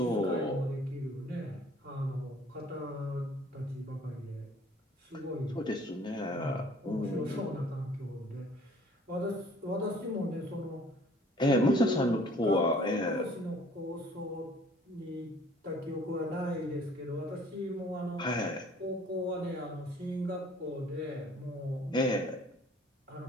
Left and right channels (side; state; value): both; normal; correlation 0.55